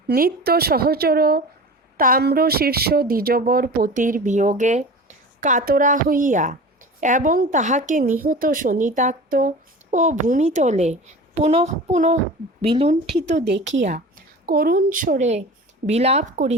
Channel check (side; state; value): both; normal; correlation 0.36